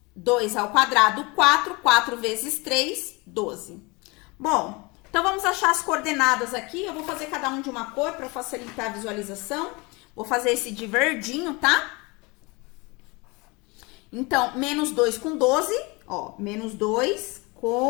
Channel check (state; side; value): quieter; right; 26.5 dB